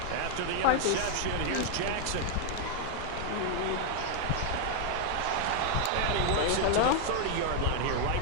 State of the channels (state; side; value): different; both; correlation 0.00